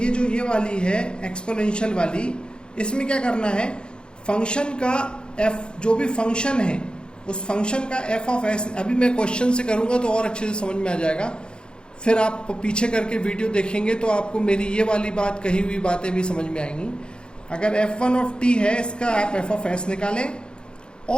ये वाली है एक्सपोनेंशियल वाली, इसमें क्या करना है, फंक्शन का f, जो भी फंक्शन है उस फंक्शन का f ऑफ s, अभी मैं क्वेश्चन से करूंगा तो और अच्छे से समझ में आ जाएगा, फिर आप पीछे करके वीडियो देखेंगे तो आपको मेरी ये वाली बात, कही हुई बातें भी समझ में आएंगी। अगर f1 ऑफ t है, इसका आप f ऑफ s निकालें,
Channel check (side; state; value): right; late; 0.050 ms